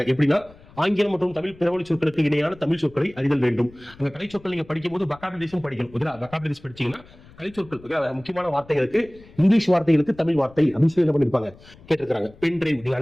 எப்படின்னா ஆங்கிலம் மற்றும் தமிழ் பிறமொழி சொற்களுக்கு இணையான தமிழ் சொற்களை அறிதல் வேண்டும். அந்த கலை சொற்கள் நீங்க படிக்கும் போது வொக்காபுலரிஸும் படிக்கணும். வொக்காபுலரிஸ் படிச்சீங்கன்னா கலை சொற்கள் முக்கியமான வார்த்தைகளுக்கு இங்கிலீஷ் வார்த்தைகளுக்கு தமிழ் வார்த்தை அப்படின்னு சொல்லி என்ன பண்ணிருப்பாங்க கேட்டிருக்காங்க. பென் டிரைவ் நீங்க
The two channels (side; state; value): left; noise; rumble, 23 dB below the sound